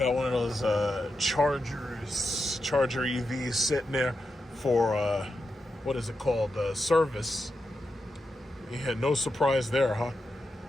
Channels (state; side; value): normal; both; correlation 0.88